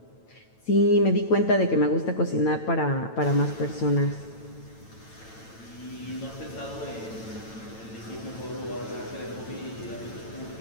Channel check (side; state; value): right; late; 9.0 ms